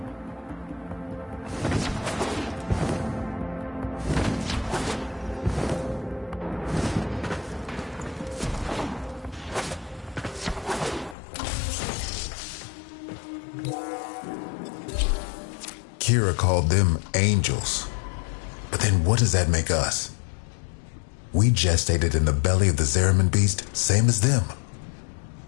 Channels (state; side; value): drops out; right; at 11.2 s